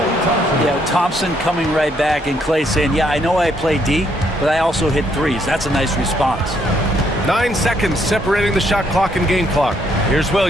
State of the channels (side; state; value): both; normal; correlation 0.71